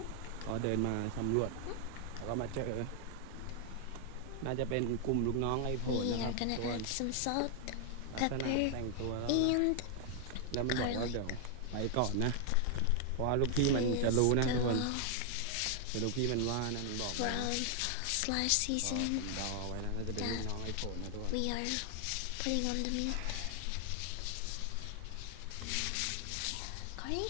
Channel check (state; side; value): different; both; correlation 0.00